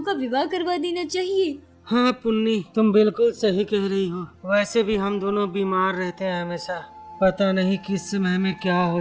का विवाह करवा देना चाहिए। हाँ पुन्नी, तुम बिल्कुल सही कह रही हो। वैसे भी हम दोनों बीमार रहते हैं हमेशा। पता नहीं किस समय में क्या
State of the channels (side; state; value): both; identical; correlation 1.00